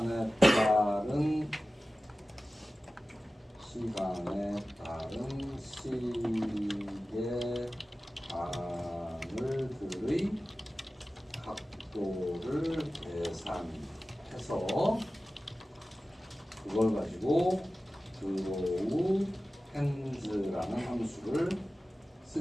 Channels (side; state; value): both; normal; correlation 0.96